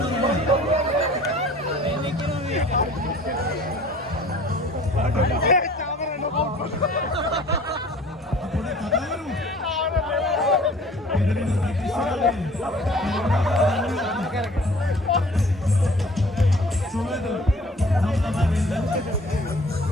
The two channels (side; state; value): both; normal; correlation 0.49